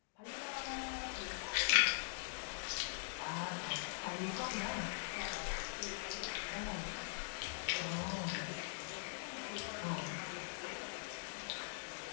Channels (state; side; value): silent; right; digital silence